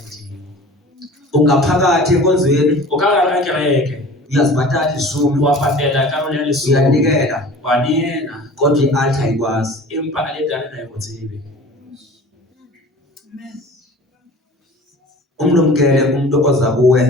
Ungaphakathi enkonzweni O ka gare ga kereke, uyazibhatala izumi wa patela karolo ya lesome, uyanikela wa neela, kodwa i-altar ayikwazi. empa altare ga e go tsebe. Umlumkele umuntu oza kuwe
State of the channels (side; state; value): both; normal; correlation 0.42